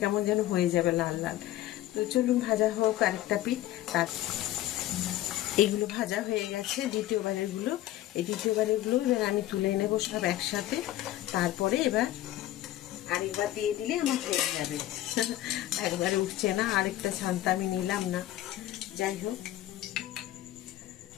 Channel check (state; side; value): quieter; right; 14.2 dB